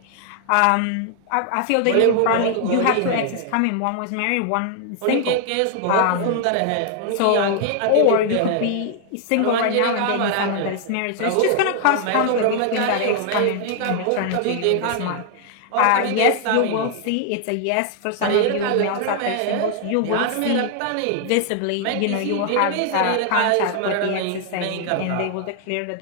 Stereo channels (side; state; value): both; different; correlation 0.00